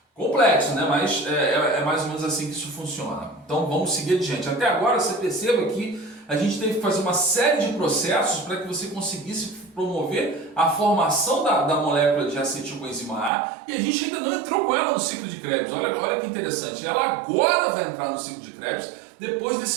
Complexo, né? Mas é mais ou menos assim que isso funciona. Então vamos seguir adiante. Até agora você perceba que a gente teve que fazer uma série de processos para que você conseguisse promover a formação da molécula de acetilcoenzima A, e a gente ainda não entrou com ela no ciclo de Krebs. Olha que interessante, ela agora vai entrar no ciclo de Krebs depois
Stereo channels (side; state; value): left; drops out; at 13.3 s